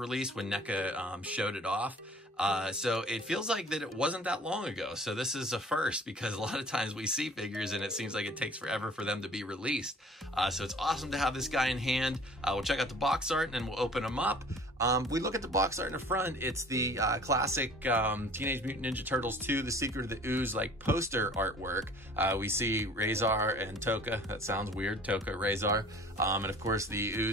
when NECA showed it off. So it feels like that it wasn't that long ago. So this is a first, because a lot of times we see figures and it seems like it takes forever for them to be released. So it's awesome to have this guy in hand. We'll check out the box art and then we'll open them up. We look at the box art in the front. It's the classic Teenage Mutant Ninja Turtles 2, The Secret of the Ooze, like poster artwork. We see Razor and Toka. That sounds weird, Toka, Razor. And of course the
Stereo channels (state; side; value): normal; both; correlation 0.49